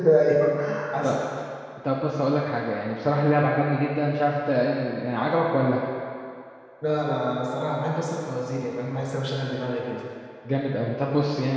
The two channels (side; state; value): both; identical; correlation 1.00